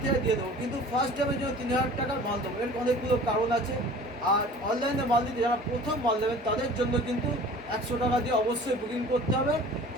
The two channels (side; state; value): both; normal; correlation 0.44